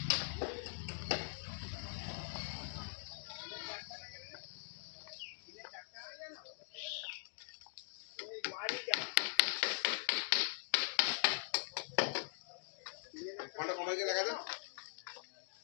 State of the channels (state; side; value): silent; right; digital silence